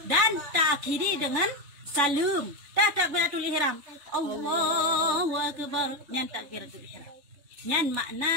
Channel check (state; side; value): late; left; 3.5 ms